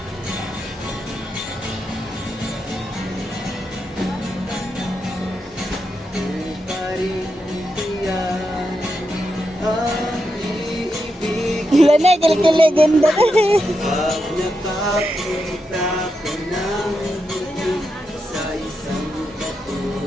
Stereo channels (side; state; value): both; normal; correlation 0.85